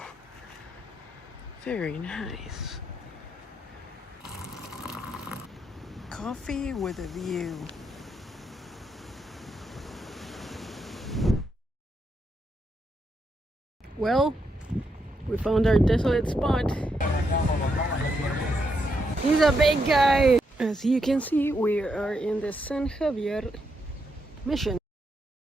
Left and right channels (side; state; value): both; normal; correlation 0.80